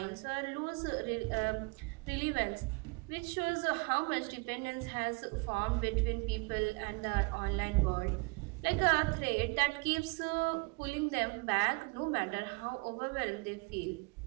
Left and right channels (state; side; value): quieter; left; 30.1 dB